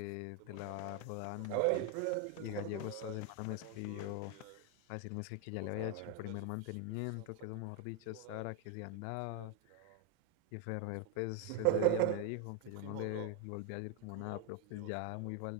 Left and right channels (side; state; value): both; different; correlation 0.01